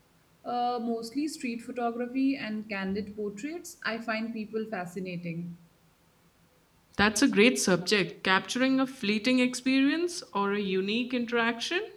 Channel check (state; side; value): identical; both; correlation 1.00